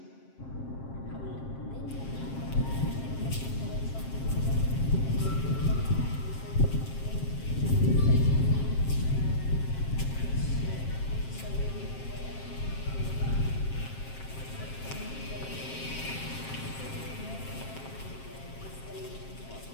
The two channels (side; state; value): right; late; 7.5 ms